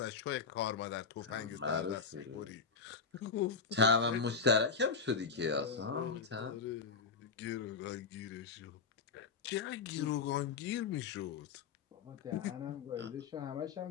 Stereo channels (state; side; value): quieter; right; 5.2 dB